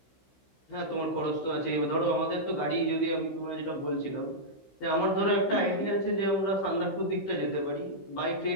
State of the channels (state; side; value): late; right; 15 ms